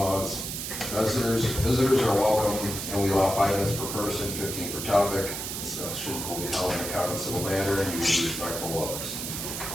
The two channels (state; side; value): noise; right; hiss, 5 dB below the sound